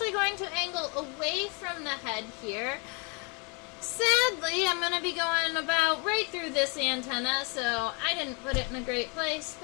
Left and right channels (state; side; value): quieter; right; 33.2 dB